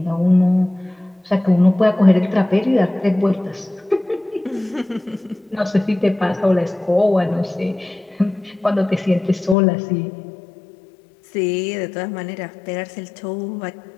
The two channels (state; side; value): drops out; right; at 9.6 s